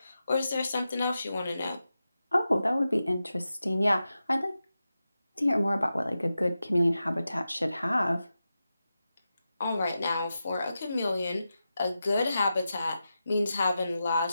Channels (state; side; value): inverted; both; correlation -0.91